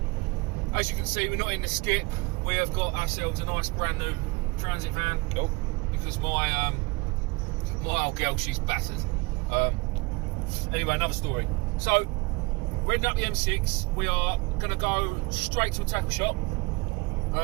As you can see, we're not in the skip. We have got ourselves a nice brand new transit van. Cool. Because my old girl, she's battered. Anyway, another story. So, we're heading up the M6. We are going to go straight to a tackle shop.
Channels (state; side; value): quieter; left; 25.7 dB